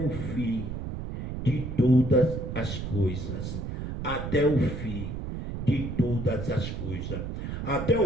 fim de todas as coisas. Até o fim de todas as coisas. Até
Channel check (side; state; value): right; noise; rumble, 5 dB below the sound